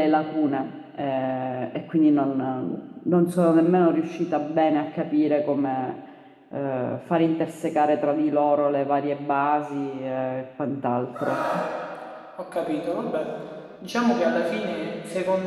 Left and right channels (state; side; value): identical; both; correlation 1.00